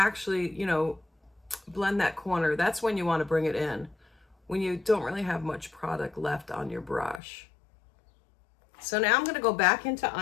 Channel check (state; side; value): drops out; right; at 7.2 s